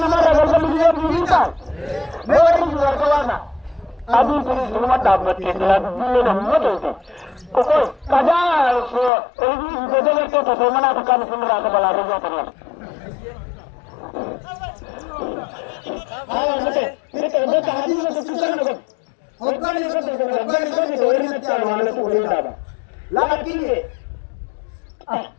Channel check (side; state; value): right; drops out; at 9.1 s